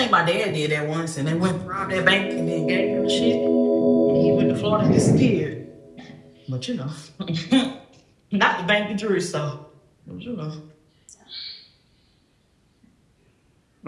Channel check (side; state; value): both; identical; correlation 1.00